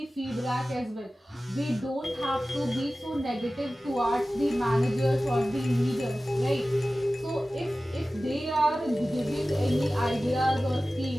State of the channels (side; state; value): both; normal; correlation 0.96